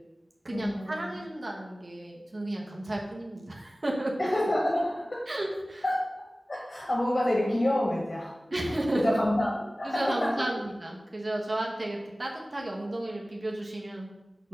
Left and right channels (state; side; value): normal; both; correlation 0.97